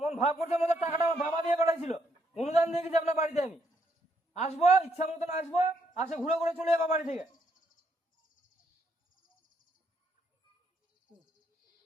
ভাব করছে আমাদের টাকাটা আমার বাবা দিয়ে পাঠাইছিল, অনুদান দিয়ে গেছি আপনার বাড়িতে। আমি আসবো, ইচ্ছা মতন আসবো, আসে ঘুরে ঘুরে চলে যাবো বাড়ি থেকে।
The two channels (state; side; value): normal; both; correlation 0.74